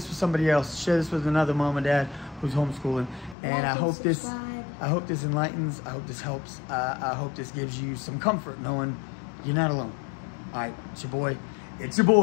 with somebody else. Share this with another mom and dad who's homeschooling. And Like I and hope subscribe. I hope this enlightens. I hope this helps. I hope this gives you some comfort knowing you're not alone. All right, it's your boy. It's your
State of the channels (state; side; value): drops out; right; at 3.4 s